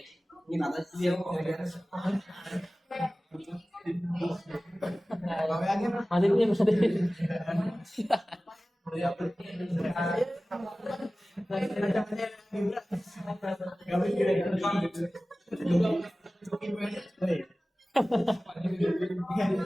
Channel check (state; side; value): normal; both; correlation 0.97